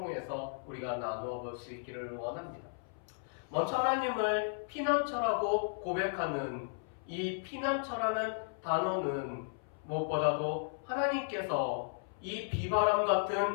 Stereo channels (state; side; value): silent; right; 54 dB below the other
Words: 우리가 나누어 볼 수 있기를 원합니다. 먼저 하나님을 피난처라고 고백하는 이 피난처라는 단어는 무엇보다도 하나님께서 이 비바람